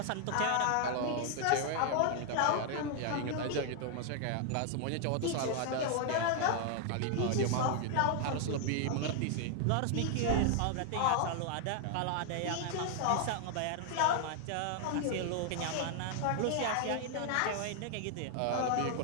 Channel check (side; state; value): both; different; correlation 0.00